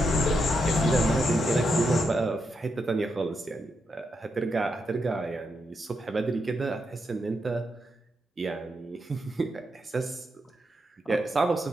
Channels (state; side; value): normal; both; correlation 0.83